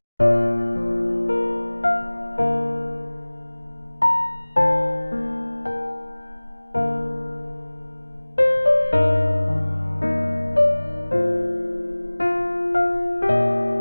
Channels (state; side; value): inverted; both; correlation -1.00